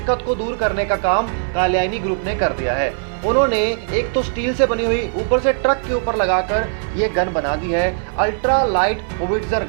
को दूर करने का काम कात्यायनी ग्रुप ने कर दिया है। उन्होंने एक तो स्टील से बनी हुई ऊपर से ट्रक के ऊपर लगाकर ये गन बना दी है, अल्ट्रा लाइट होविट्जर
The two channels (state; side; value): silent; left; 56 dB below the other